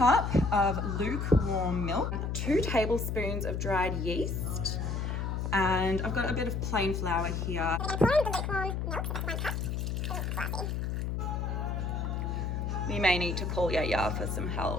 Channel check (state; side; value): noise; left; hum, 1 dB below the sound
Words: of lukewarm milk, 2 tablespoons of dried yeast, and I've got a bit of plain flour here. We may need to call Yaya for some